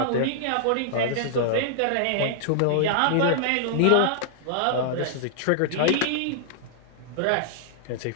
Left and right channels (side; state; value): both; different; correlation -0.01